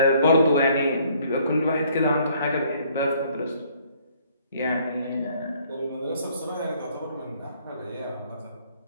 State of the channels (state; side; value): inverted; both; correlation -0.62